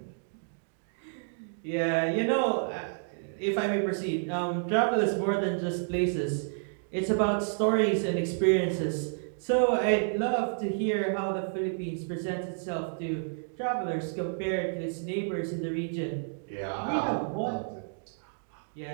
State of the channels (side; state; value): left; silent; digital silence